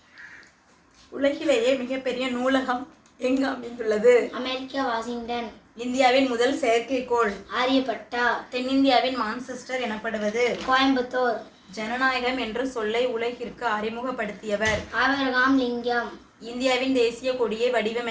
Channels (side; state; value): both; identical; correlation 1.00